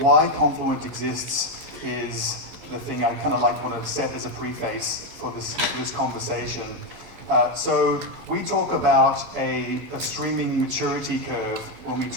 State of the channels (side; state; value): left; late; 12 ms